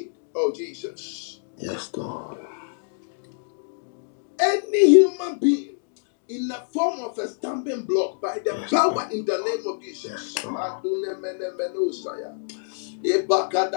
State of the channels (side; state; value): right; silent; digital silence